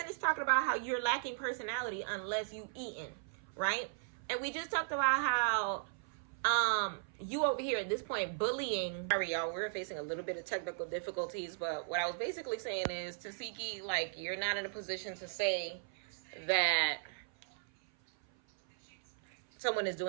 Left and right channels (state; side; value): silent; left; 53 dB below the other